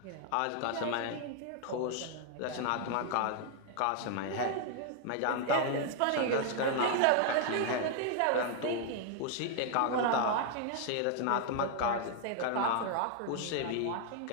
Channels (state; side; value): different; both; correlation 0.00